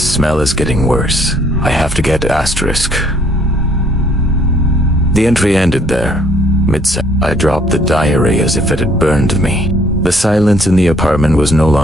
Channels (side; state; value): both; normal; correlation 0.63